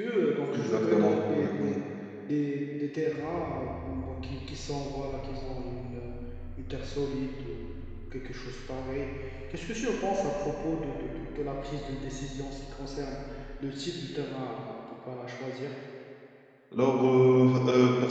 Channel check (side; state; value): both; identical; correlation 1.00